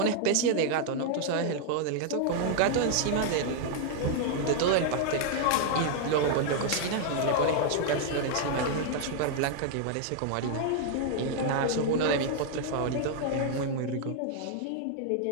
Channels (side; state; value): both; different; correlation 0.00